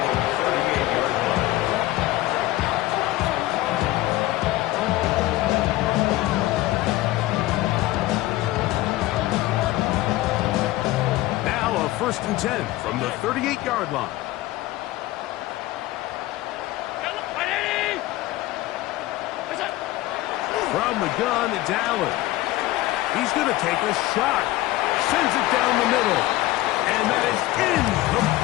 Now a 1st and 10 from the 38-yard line. From the gun, it's Allen. He's going to take a shot. Sends it down the middle. And that is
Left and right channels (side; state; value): right; quieter; 17.2 dB